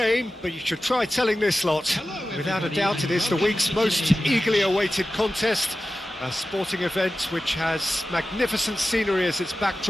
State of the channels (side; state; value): both; normal; correlation 0.94